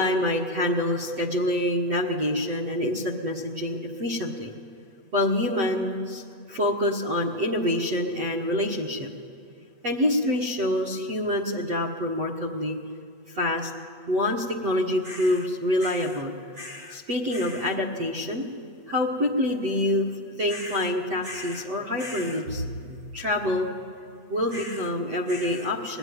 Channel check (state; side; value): late; left; 8.3 ms